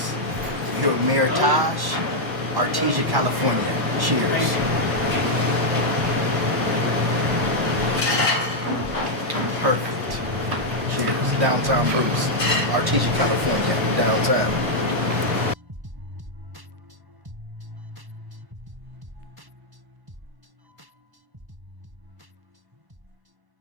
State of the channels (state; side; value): late; left; 1.1 ms